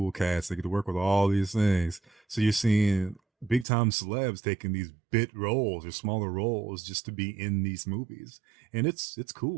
cats. They get to work with all these things. So you're seeing big time celebs taking these bit roles or smaller roles just to be in these movies. And it's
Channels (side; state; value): left; drops out; at 3.7 s